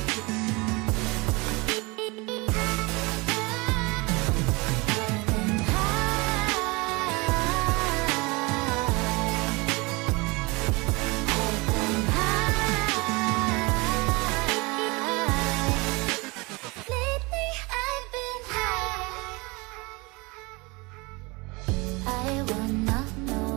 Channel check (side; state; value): left; quieter; 26.0 dB